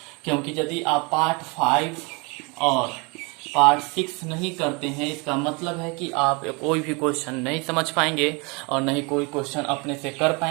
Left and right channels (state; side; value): quieter; left; 29.8 dB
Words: क्योंकि यदि आप पार्ट 5 और पार्ट 6 नहीं करते हैं, इसका मतलब है कि आप कोई भी क्वेश्चन नहीं समझ पाएंगे और नहीं कोई क्वेश्चन अपने से कर